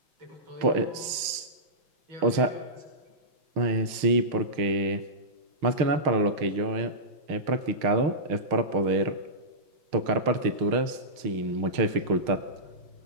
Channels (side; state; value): left; late; 6.5 ms